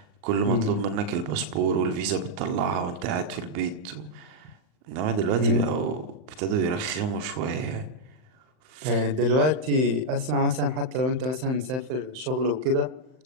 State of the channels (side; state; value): left; late; 39 ms